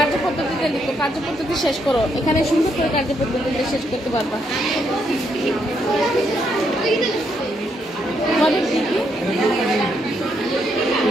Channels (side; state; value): both; normal; correlation 0.76